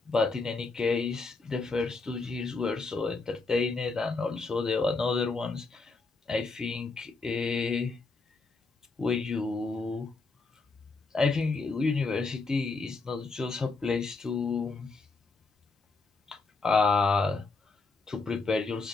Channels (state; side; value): quieter; right; 4.0 dB